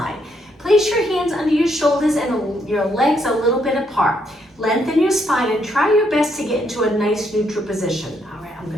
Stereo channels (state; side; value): normal; both; correlation 0.74